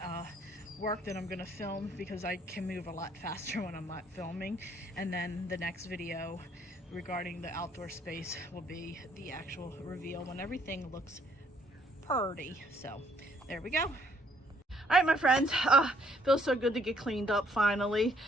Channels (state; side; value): normal; both; correlation 0.65